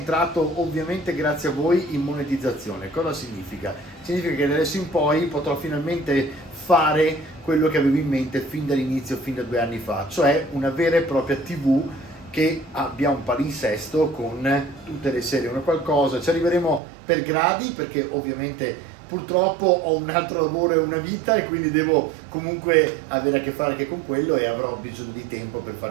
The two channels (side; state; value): left; drops out; at 16.8 s